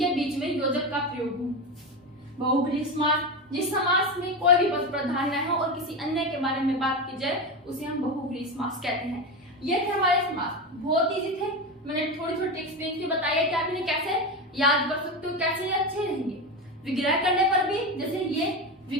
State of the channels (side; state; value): both; normal; correlation 0.18